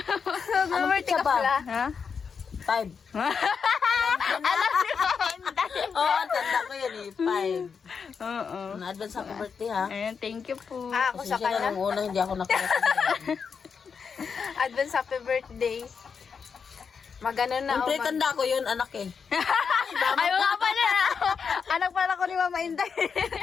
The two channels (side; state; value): right; quieter; 6.1 dB